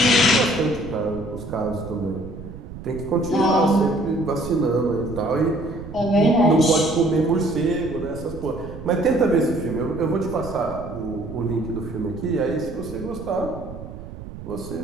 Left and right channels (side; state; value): right; noise; rumble, 12 dB below the sound